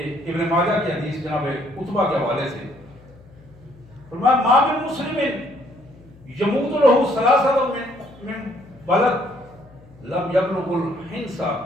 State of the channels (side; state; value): left; noise; hum, 24 dB below the sound